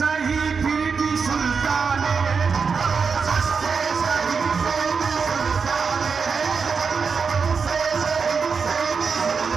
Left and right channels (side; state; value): left; quieter; 5.5 dB